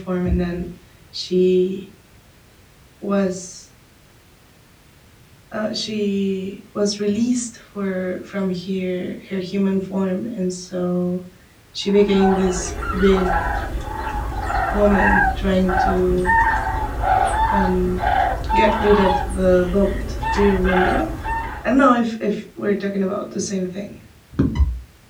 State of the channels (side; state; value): both; identical; correlation 1.00